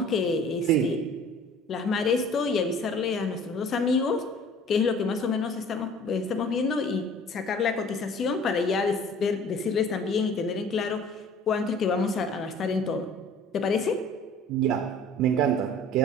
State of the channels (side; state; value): both; normal; correlation 0.48